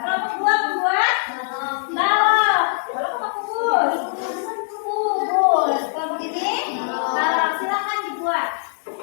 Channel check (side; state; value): right; silent; 61 dB below the other